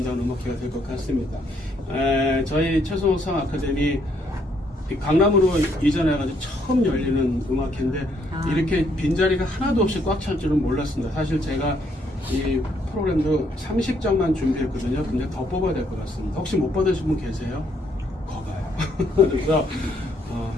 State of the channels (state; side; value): normal; both; correlation 0.70